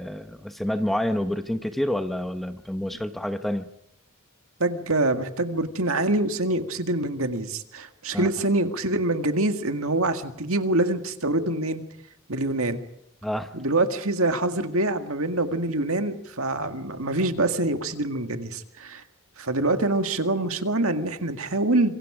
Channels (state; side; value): normal; both; correlation 0.13